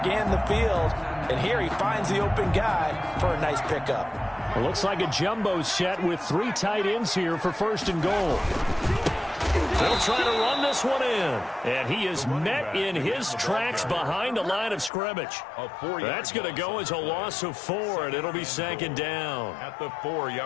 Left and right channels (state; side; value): drops out; right; at 14.9 s